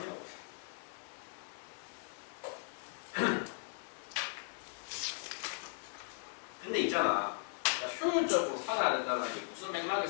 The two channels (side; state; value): right; silent; digital silence